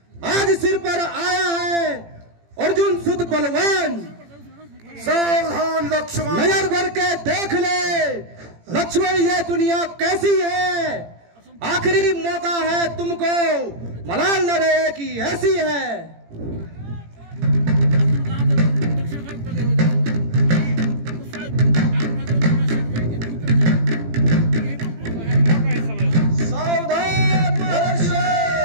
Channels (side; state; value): left; late; 18 ms